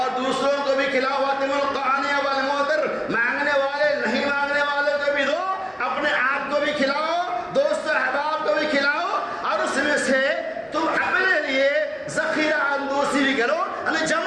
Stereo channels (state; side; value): identical; both; correlation 1.00